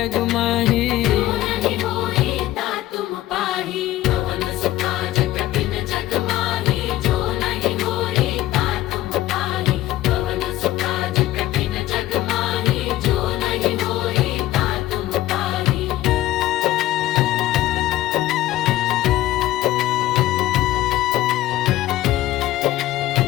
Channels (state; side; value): quieter; right; 15.1 dB